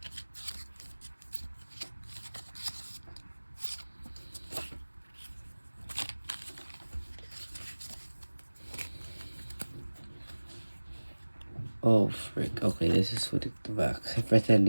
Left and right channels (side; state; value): both; inverted; correlation -1.00